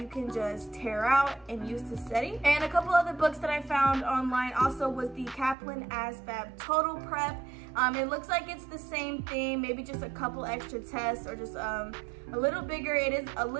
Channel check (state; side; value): drops out; left; at 5.6 s